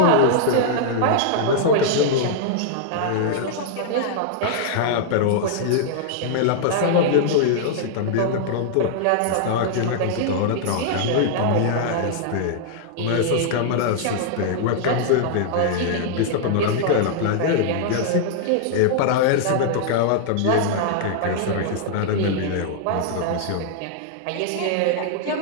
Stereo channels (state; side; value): different; both; correlation -0.01